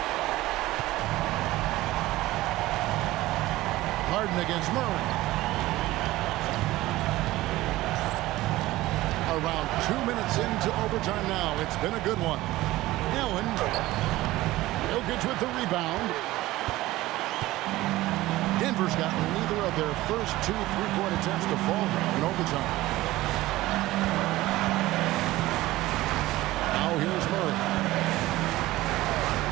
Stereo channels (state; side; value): quieter; left; 17.4 dB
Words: Harden against Murray. Around 2 minutes into overtime now. It's been a good one. Allen. Jokic with the rebound. Denver's gotten neither of their first two three-point attempts to fall in overtime. Now here's Murray.